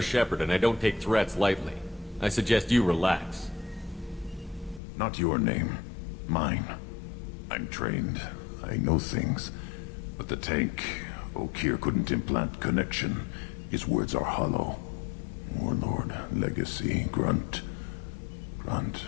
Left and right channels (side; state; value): right; drops out; at 4.8 s